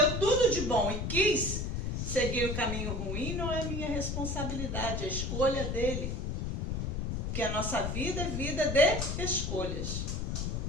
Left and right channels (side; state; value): left; noise; rumble, 2 dB below the sound